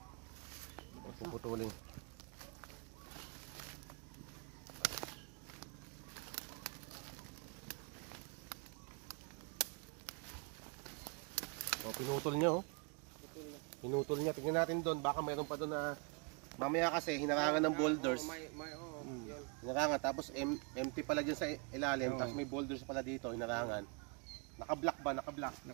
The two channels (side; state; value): left; quieter; 34.3 dB